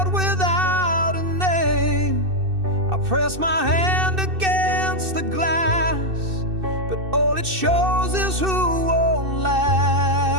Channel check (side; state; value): left; late; 2.6 ms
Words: without a name. I press my hand against the glass, but all it shows is who won't